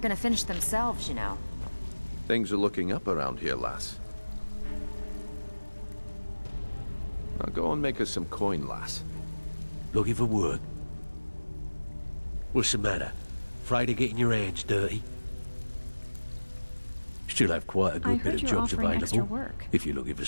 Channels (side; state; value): both; inverted; correlation -1.00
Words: gonna finish themselves, you know. Things are looking up around here, lass. Now go and make us some coin, lass. Looking for work? What's the matter? Afraid of getting your hands dirty? Still have quite a I good heard bit of you're jobs offering available. extra work. If you're looking for